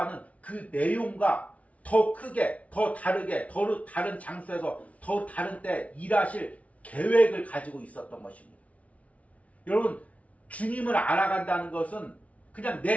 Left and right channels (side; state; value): right; late; 0.066 ms